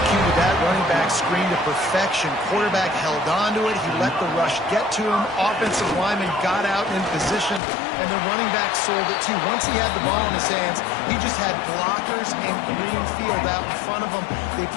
that running back screen to perfection. Quarterback held on to it. He let the rush get to him. Offensive lineman got out in position, and the running back sold it too. Once he had the ball in his hands, he just had blockers and green field out in front of him. They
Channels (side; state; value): right; drops out; at 7.6 s